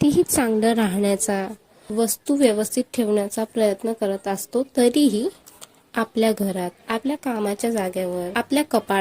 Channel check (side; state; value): both; identical; correlation 1.00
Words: चांगलं राहण्याचा, वस्तू व्यवस्थित ठेवण्याचा प्रयत्न करत असतो, तरीही आपल्या घरात, आपल्या कामाच्या जागेवर, आपल्या